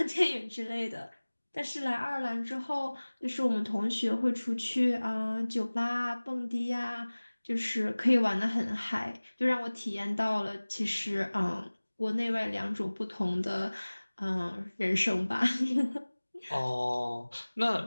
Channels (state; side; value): inverted; both; correlation -1.00